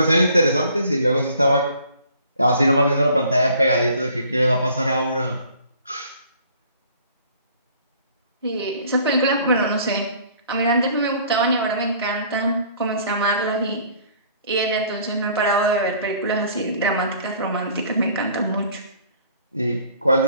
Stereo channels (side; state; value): both; inverted; correlation -0.55